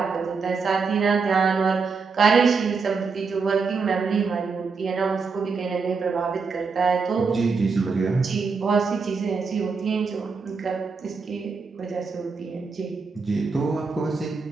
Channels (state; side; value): quieter; left; 4.9 dB